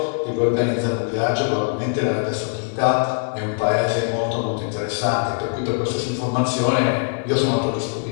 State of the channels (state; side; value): silent; right; digital silence